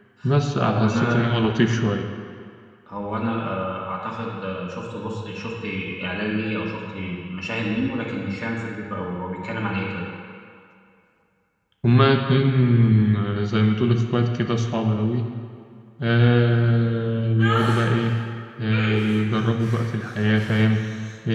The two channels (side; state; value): both; identical; correlation 1.00